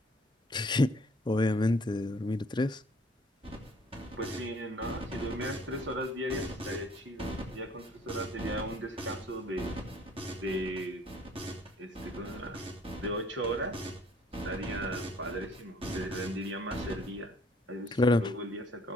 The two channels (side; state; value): both; normal; correlation 0.59